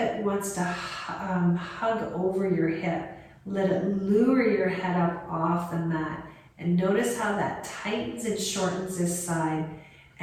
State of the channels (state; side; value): identical; both; correlation 1.00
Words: wants to hug over your hip. Let it lure your head up off the mat. And notice how that tightens and shortens this side.